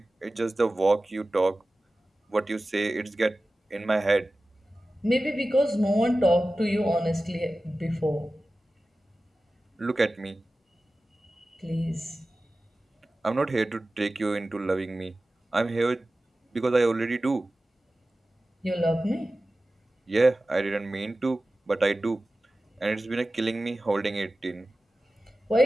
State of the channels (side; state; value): both; normal; correlation 0.95